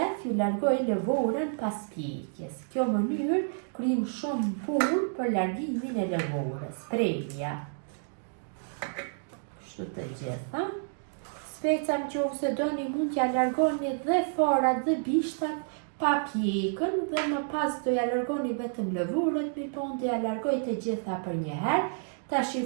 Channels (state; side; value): silent; left; digital silence